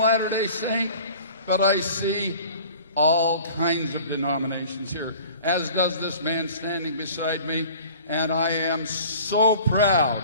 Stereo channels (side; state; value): both; inverted; correlation -0.46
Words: Saint, but I see all kinds of denominations here, as does this man standing beside me, and I am so proud